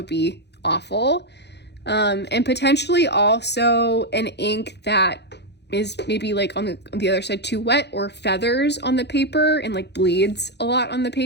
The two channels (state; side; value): late; right; 0.50 ms